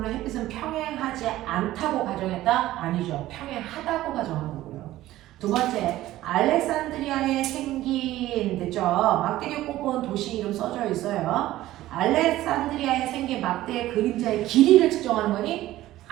햇빛은 평행하지 않다고 가정했다? 아니죠. 평행하다고 가정한 거고요. 두 번째, 알렉산드리아에 생긴, 됐죠? 막대기 꼽은 도시 이름 써져 있어요. 알렉산드리아에 생긴 막대의 그림자의 길이를 측정하는 거니?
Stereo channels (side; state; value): left; quieter; 15.3 dB